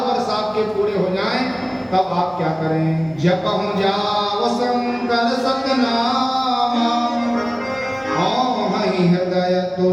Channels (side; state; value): both; identical; correlation 1.00